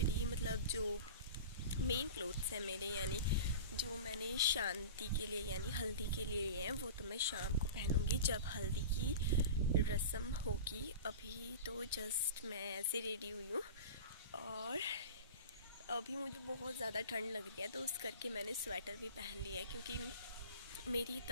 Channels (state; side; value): inverted; both; correlation -0.34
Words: मतलब जो मेन क्लोथ्स हैं मेरे, यानी जो मैंने शांति के लिए यानी हल्दी के लिए लिए हैं, वो तो मैं शाम को पहनूंगी जब हल्दी की रस्म होगी। अभी तो जस्ट मैं ऐसे रेडी हुई हूँ, और अभी मुझे बहुत ज़्यादा ठंड लग रही है, तो उस करके मैंने स्वेटर भी पहन लिया है, क्योंकि मेरी